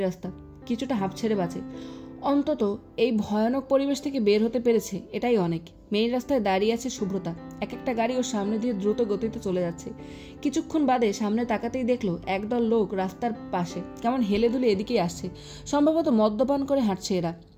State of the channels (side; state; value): both; identical; correlation 1.00